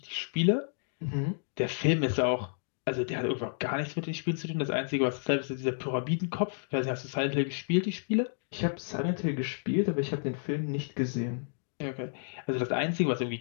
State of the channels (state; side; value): silent; right; digital silence